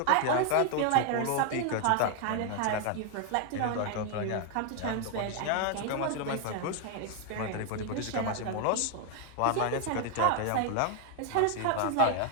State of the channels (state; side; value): different; both; correlation 0.00